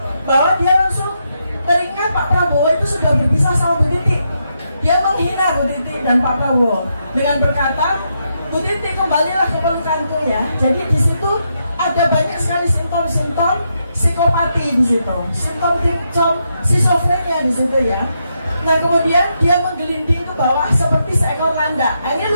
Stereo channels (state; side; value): inverted; both; correlation -0.81